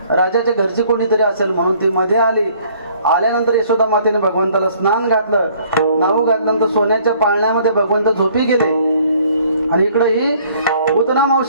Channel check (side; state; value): both; inverted; correlation -0.59